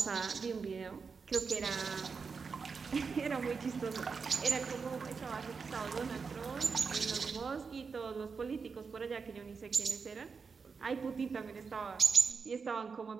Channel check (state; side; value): quieter; left; 5.2 dB